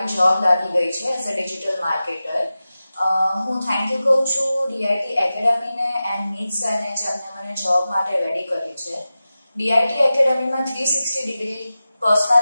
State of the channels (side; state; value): both; inverted; correlation -0.94